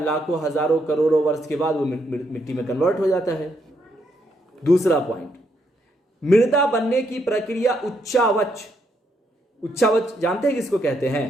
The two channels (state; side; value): normal; both; correlation 0.76